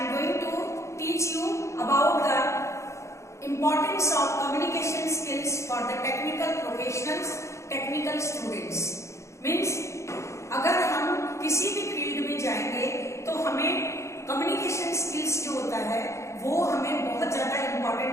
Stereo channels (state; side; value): late; right; 0.14 ms